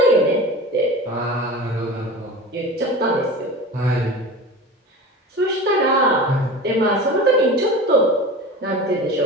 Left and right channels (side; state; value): both; normal; correlation 0.33